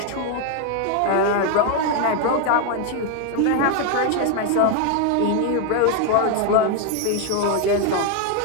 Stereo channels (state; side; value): different; both; correlation 0.01